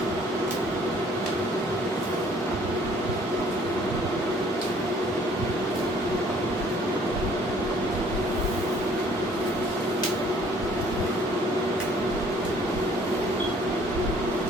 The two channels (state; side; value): normal; both; correlation 0.58